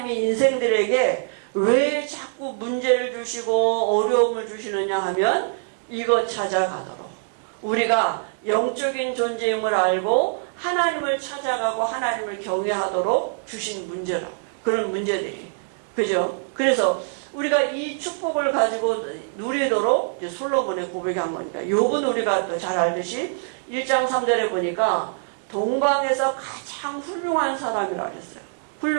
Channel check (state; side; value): silent; left; digital silence